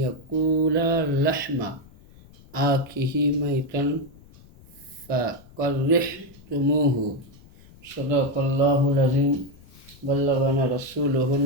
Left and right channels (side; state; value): left; noise; rumble, 24 dB below the sound